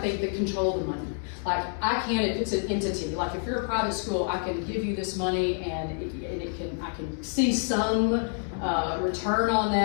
the control of the money. Like, I can, if it's an entity, like if you're a private school, I can give you this money and I can see some return on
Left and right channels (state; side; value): silent; right; 59 dB below the other